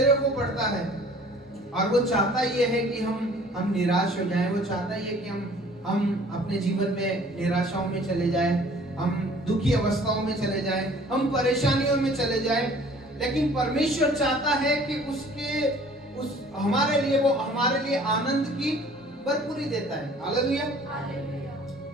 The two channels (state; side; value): normal; both; correlation 0.52